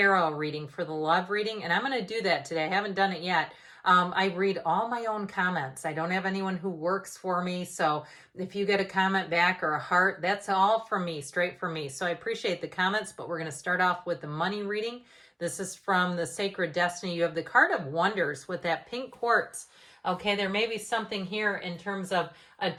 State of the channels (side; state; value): both; identical; correlation 1.00